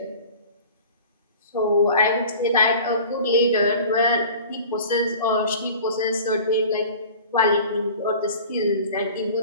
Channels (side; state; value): both; inverted; correlation -0.41